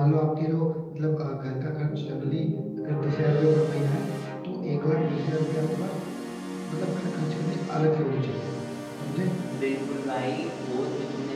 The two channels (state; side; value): identical; both; correlation 1.00